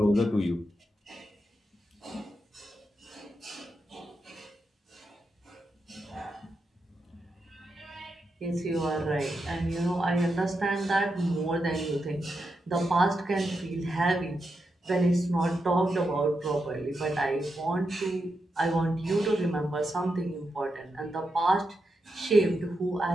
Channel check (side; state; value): both; normal; correlation 0.86